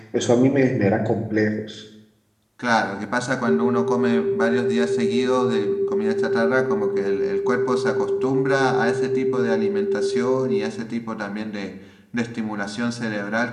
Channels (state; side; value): identical; both; correlation 1.00